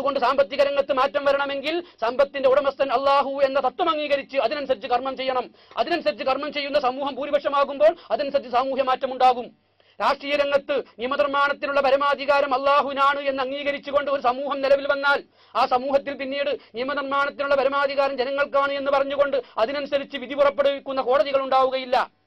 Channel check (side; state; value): both; identical; correlation 1.00